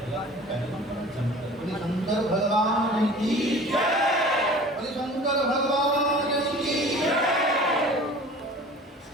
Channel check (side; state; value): both; normal; correlation 0.43